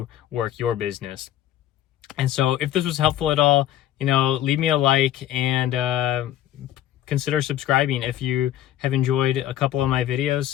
work your business. And so if this was helpful at all, leave me a like and consider subscribing if you have enjoyed a couple of my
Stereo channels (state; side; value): quieter; right; 12.2 dB